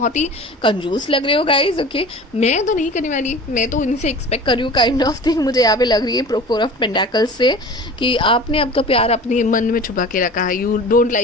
ही कंजूस लग रहे हो गाइज। ओके, मैं तो नहीं करने वाली, मैं तो इनसे एक्सपेक्ट कर रही हूँ काइंड ऑफ थिंग मुझे यहाँ पे लग रही है 4 ऑफ पेंटाकल्स से, कि आपने आपका प्यार अपने मन में छुपा के रखा है, you don't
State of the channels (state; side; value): normal; both; correlation 0.39